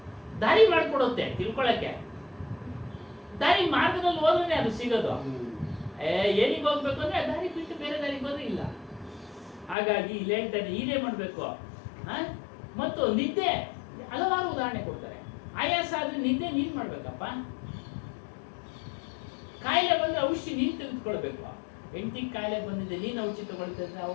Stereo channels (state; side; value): drops out; right; at 9.8 s